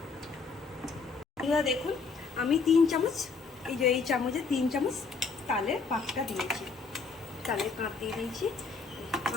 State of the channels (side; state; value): right; quieter; 4.7 dB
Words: দেখুন আমি 3 চামচ, এই যে এই চামচে 3 চামচ তালের পাকটা দিয়েছি, তালের কাপ দিয়ে দিয়েছি।